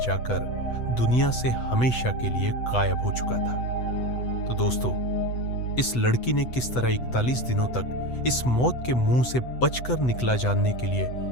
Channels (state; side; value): late; right; 8.0 ms